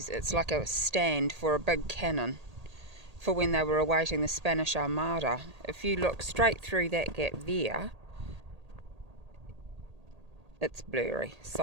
it's like a stand for a big cannon for when they were awaiting the Spanish Armada. If you look straight through that gap there, it's blurry,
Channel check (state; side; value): late; left; 1.8 ms